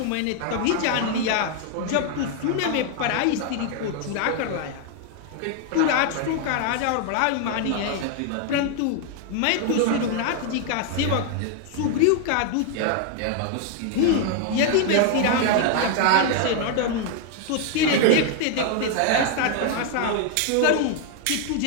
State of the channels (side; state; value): both; different; correlation 0.00